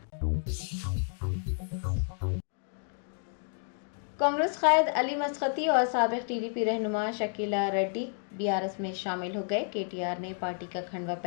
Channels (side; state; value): right; silent; 57 dB below the other